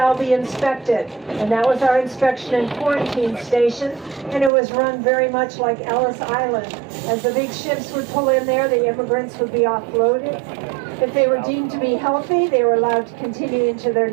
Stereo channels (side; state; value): left; drops out; at 4.5 s